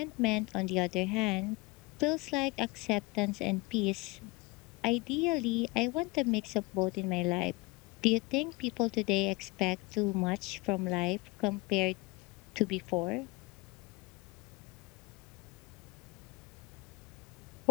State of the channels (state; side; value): quieter; right; 25.1 dB